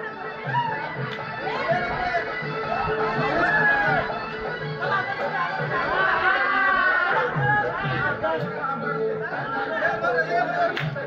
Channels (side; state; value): both; identical; correlation 1.00